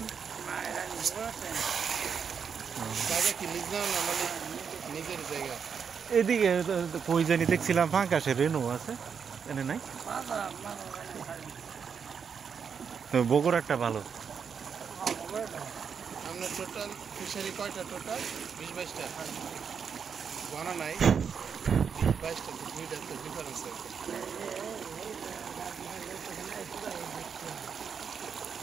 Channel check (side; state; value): left; quieter; 6.6 dB